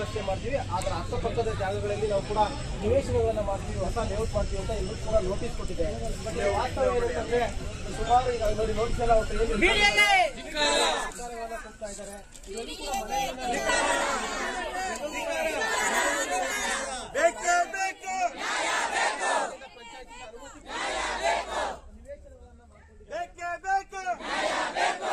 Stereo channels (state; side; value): identical; both; correlation 1.00